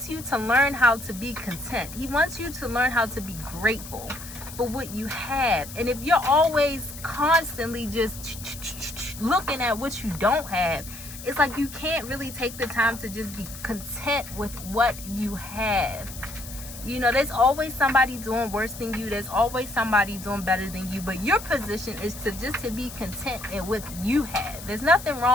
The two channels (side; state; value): left; noise; hiss, 13 dB below the sound